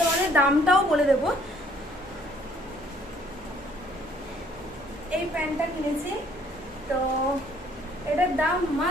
তোমাদের দামটাও বলে দেবো। এই প্যান্টটা কিনেছি, তো এটার দাম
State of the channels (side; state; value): both; normal; correlation 0.62